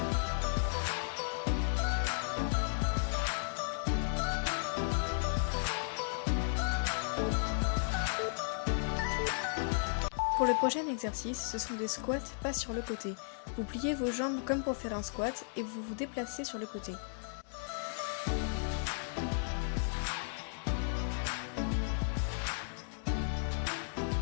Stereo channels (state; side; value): silent; right; digital silence